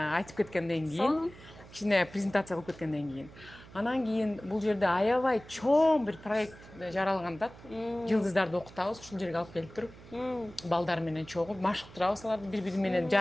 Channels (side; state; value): right; noise; hum, 19 dB below the sound